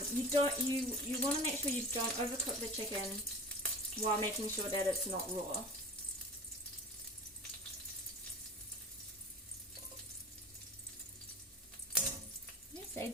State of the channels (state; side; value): normal; both; correlation 0.36